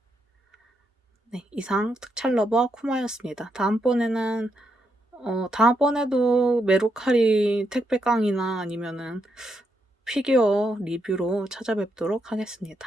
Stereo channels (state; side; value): normal; both; correlation 0.80